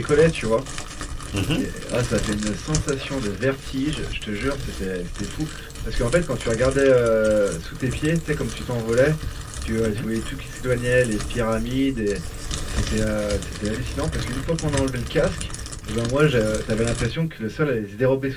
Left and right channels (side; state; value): both; identical; correlation 1.00